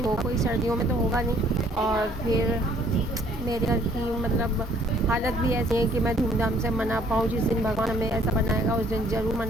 हो, कोई सर्दियों में तो होगा नहीं। और फिर मेरे घर की मतलब हालत भी ऐसी है कि मैं धूमधाम से मना पाऊँ। जिस दिन भगवान हमें ऐसा बनाएगा उस दिन ज़रूर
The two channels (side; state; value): both; normal; correlation 0.61